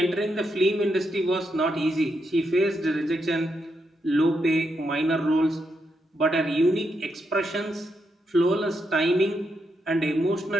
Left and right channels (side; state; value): both; normal; correlation 0.82